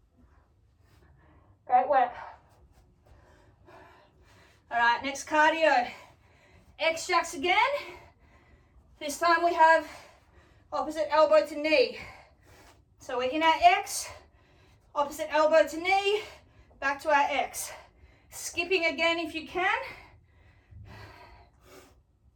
Great work. All right, next cardio. X-jacks again. This time we have opposite elbow to knee. So we're in our X, opposite elbow to knee, back to our X. Skipping again if you can.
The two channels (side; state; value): both; identical; correlation 1.00